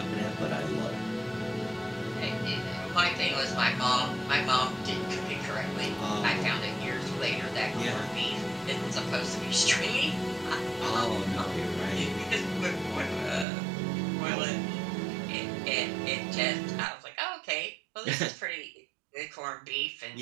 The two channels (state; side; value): drops out; left; at 13.5 s